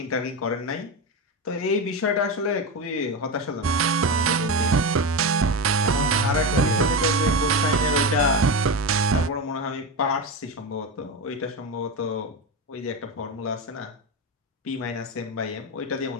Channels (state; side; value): normal; both; correlation 0.17